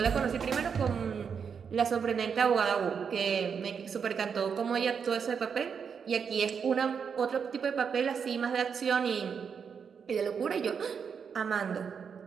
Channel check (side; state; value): left; quieter; 6.6 dB